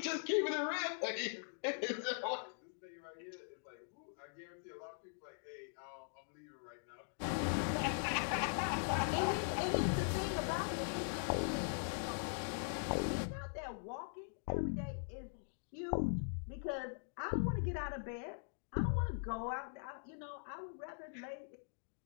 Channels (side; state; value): right; silent; digital silence